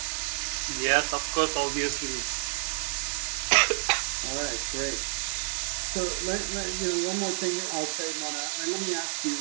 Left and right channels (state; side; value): silent; left; 59 dB below the other